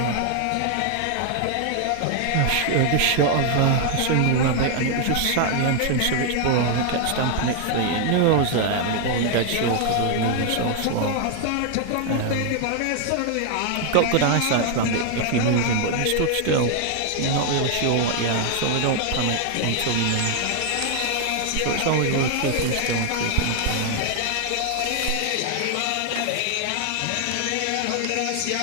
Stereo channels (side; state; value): both; different; correlation 0.00